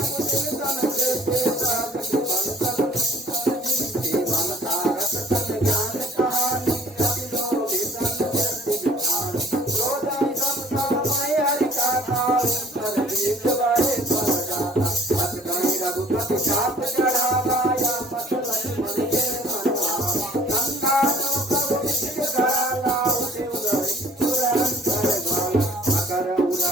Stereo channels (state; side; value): normal; both; correlation 0.55